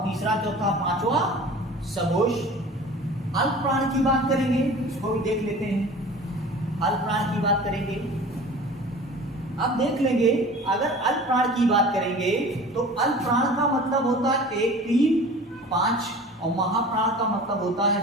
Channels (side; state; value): both; normal; correlation 0.41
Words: तीसरा चौथा पांचवा सघोष। अल्प प्राण की बात करेंगे, इसको भी देख लेते हैं। अल्प प्राण की बात करेंगे, अब देख लेंगे। अगर अल्प प्राण की बात करेंगे तो अल्प प्राण का मतलब होता है 1 3 5, और महाप्राण का मतलब होता है